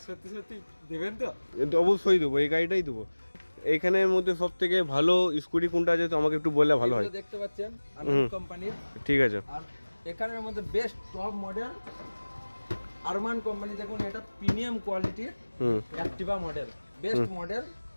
সত্যি সত্যি দেবেন তো? এটা অবশ্যই দেবো, এই গাড়িটাই দেবো। এইখানের মধ্যে সব থেকে ভালো স্কুটি কোনটা আছে তো আমাকে একটু বললে ভালো হয়। এগুলো দেখতে পাচ্ছেন আনন্দ কোম্পানির। ঠিক আছে। আর এখানের মধ্যে best top model Arman company, দেখুন এটা প্রিমিয়াম কোয়ালিটির Activa model, best model,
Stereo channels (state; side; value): inverted; both; correlation -1.00